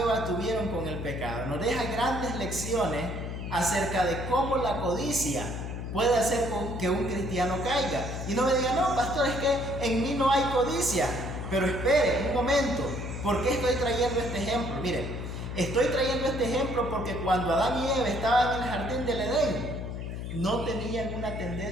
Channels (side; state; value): left; noise; hum, 6 dB below the sound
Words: Eva tuvieron con el pecado, nos deja grandes lecciones acerca de cómo la codicia puede hacer que un cristiano caiga. Y no me diga: no, pastor, es que en mí no hay codicia. Pero espere un momento, ¿por qué estoy trayendo este ejemplo? Mire, estoy trayendo este ejemplo porque cuando Adán y Eva estaban en el jardín del Edén, no tenían una